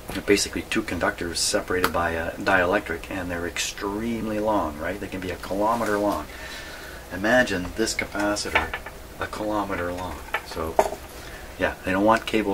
basically two conductors separated by a dielectric, and they're extremely long, right? They can be a kilometer long. Imagine this capacitor a kilometer long. So yeah, they don't want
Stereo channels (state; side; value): identical; both; correlation 1.00